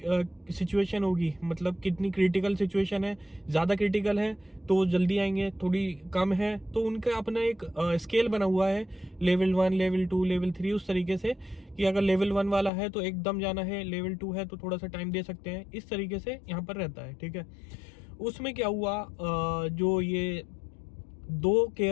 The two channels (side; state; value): right; drops out; at 12.7 s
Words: सिचुएशन होगी, मतलब कितनी क्रिटिकल सिचुएशन है, ज़्यादा क्रिटिकल है तो जल्दी आएंगे, थोड़ी कम है तो उनका अपना एक स्केल बना हुआ है, लेवल 1, लेवल 2, लेवल 3, उस तरीके से कि अगर लेवल 1 वाला है तो एकदम जाना है, लेवल 2 है तो थोड़ा सा टाइम दे सकते हैं, इस तरीके से यहाँ पर रहता है, ठीक है। उसमें क्या हुआ, जो ये दो